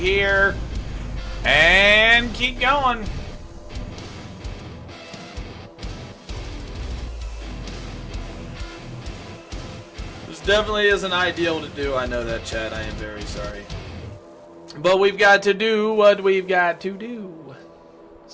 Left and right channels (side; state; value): both; identical; correlation 1.00